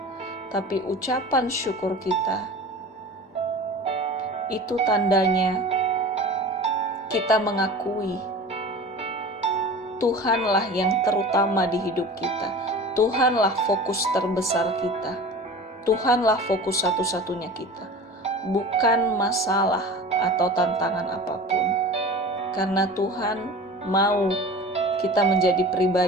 Tapi ucapan syukur kita, itu tandanya kita mengakui Tuhanlah yang terutama di hidup kita. Tuhanlah fokus terbesar kita. Tuhanlah fokus satu-satunya kita, bukan masalah atau tantangan apapun. Karena Tuhan mau kita menjadi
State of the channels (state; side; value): normal; both; correlation 0.37